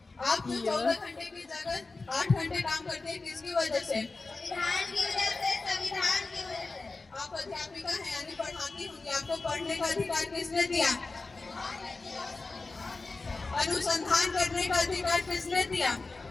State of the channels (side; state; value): right; quieter; 3.7 dB